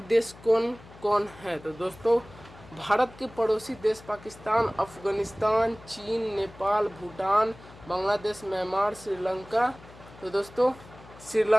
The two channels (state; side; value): noise; left; hum, 20 dB below the sound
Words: देश कौन कौन है। तो दोस्तों भारत के पड़ोसी देश पाकिस्तान, अफगानिस्तान, चीन, नेपाल, भूटान, बांग्लादेश, म्यांमार, श्रीलंका। तो दोस्तों